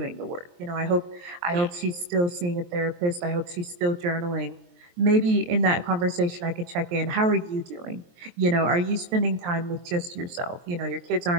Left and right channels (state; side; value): late; left; 23 ms